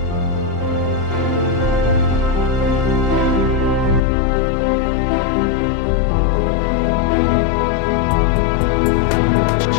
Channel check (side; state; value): right; drops out; at 4.0 s